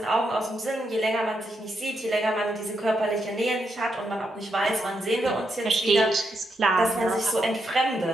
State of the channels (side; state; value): both; normal; correlation 0.81